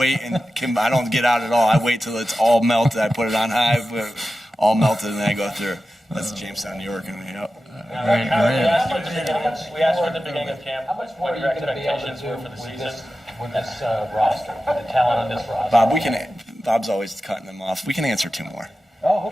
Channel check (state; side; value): normal; both; correlation 0.93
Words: and I don't get out at all. I wait till it's all melted. I put it on high, all melted, and then I go through. That's Jamestown, New York, and We asked you at the beginning of camp what your expectations were for the season with this roster, with the talent on this roster. Bob's always cutting them off. We can answer 2 more. Oh,